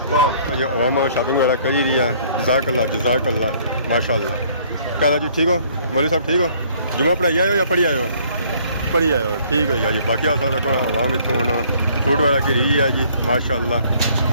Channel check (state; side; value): inverted; both; correlation -0.60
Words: बाद जो अवाम शॉपिंग वगैरह करी रही है जज़ाकल्ला माशाल्लाह। क्या जी ठीक हो मौलवी साहब ठीक हो जुमा पढ़ाई आए हो या पढ़ी आए हो पढ़ी आए हो ठीक है जी बाकी अवाम इतों हूँ फ्रूट वगैरह की रही है जी माशाल्लाह।